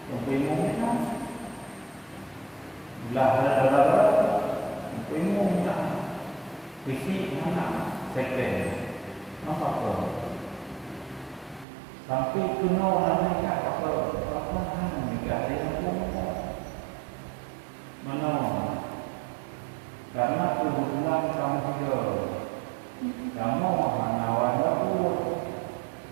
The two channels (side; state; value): left; drops out; at 11.7 s